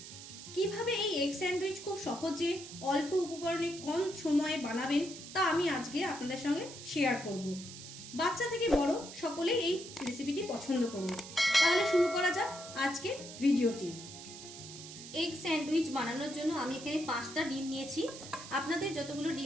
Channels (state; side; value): noise; right; hiss, 13 dB below the sound